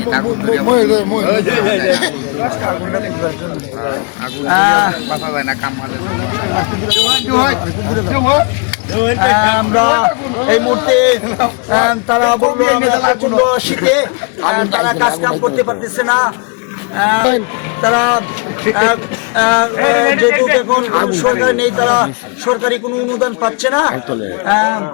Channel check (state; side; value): quieter; right; 34.2 dB